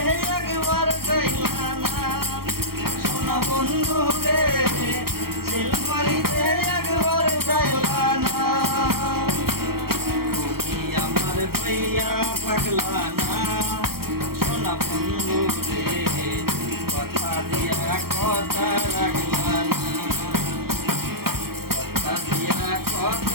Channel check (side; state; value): left; late; 0.94 ms